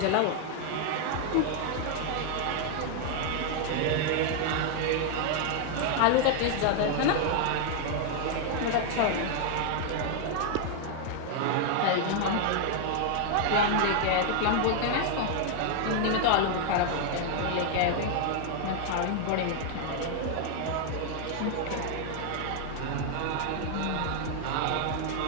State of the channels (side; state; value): both; different; correlation 0.00